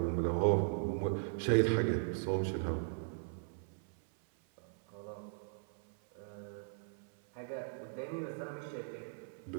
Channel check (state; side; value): silent; left; 52 dB below the other